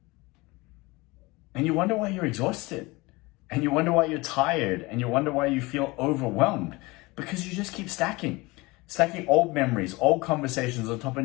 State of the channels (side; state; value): right; quieter; 23.2 dB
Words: And you wonder why you're exhausted, and you wonder why you're tired, and you wonder why you feel overwhelmed, because you just keep stacking old memories, old conversations on top